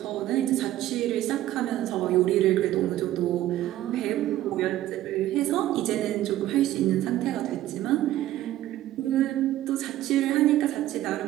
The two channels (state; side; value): quieter; left; 14.1 dB